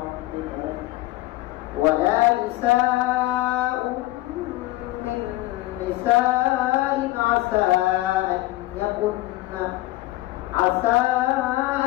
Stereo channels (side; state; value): right; quieter; 17.9 dB